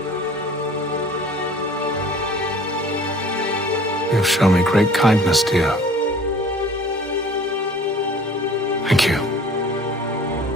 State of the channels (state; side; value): normal; both; correlation 0.49